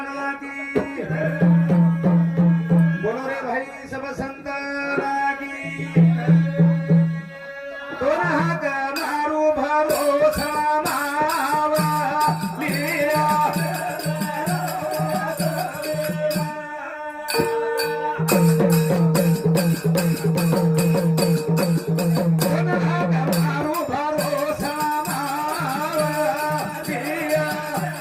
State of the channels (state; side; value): identical; both; correlation 1.00